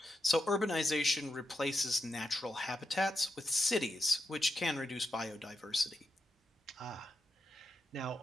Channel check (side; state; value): both; normal; correlation 0.85